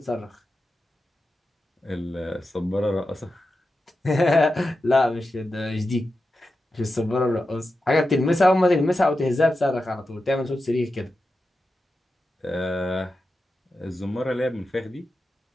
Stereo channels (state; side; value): normal; both; correlation 0.91